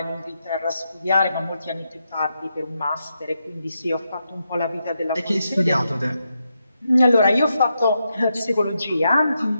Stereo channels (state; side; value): inverted; both; correlation -0.84